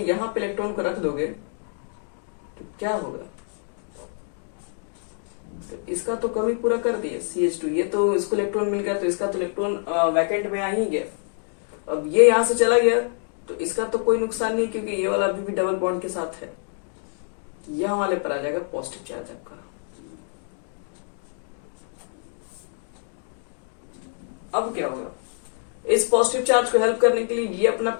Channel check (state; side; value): silent; right; 55 dB below the other